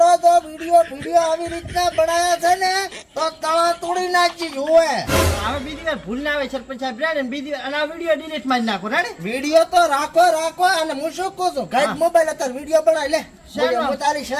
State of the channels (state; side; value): identical; both; correlation 1.00